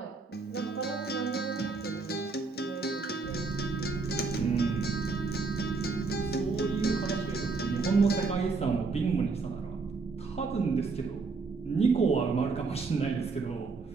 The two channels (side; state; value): left; quieter; 4.3 dB